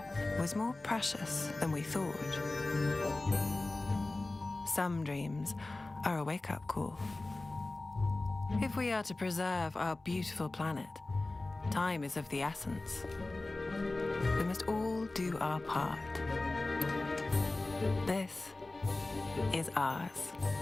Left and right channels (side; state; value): right; quieter; 3.0 dB